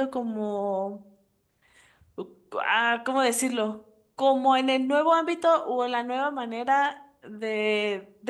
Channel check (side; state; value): both; identical; correlation 1.00